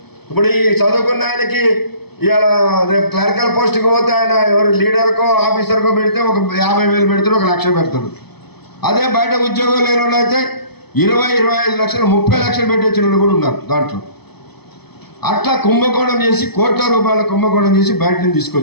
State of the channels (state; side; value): late; right; 0.98 ms